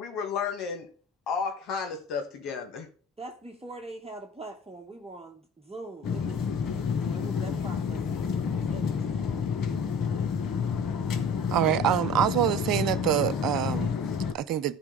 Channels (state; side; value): normal; both; correlation 0.40